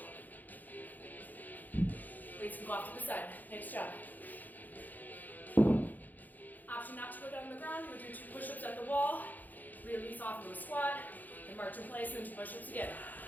Weights can go off to the side. Nice job. Option not to go down on the ground. We'll do 2 push-ups at the wall. Release off into a squat. And march in place and 2 push-ups again.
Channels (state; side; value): late; right; 0.083 ms